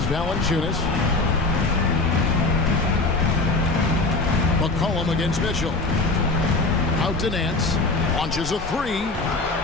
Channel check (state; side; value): quieter; right; 3.3 dB